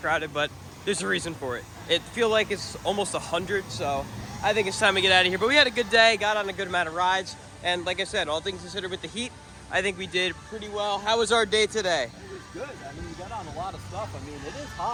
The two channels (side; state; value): both; identical; correlation 1.00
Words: crowded, but there's a reason for it. It feels like it's almost 100, so I think it's time to get out of here. But we had a good day, got on a good amount of rides, and like I said, all things considered with the heat, I think we did pretty well. How was our day today? It was good. I mean, we got on a lot of stuff. I mean, it is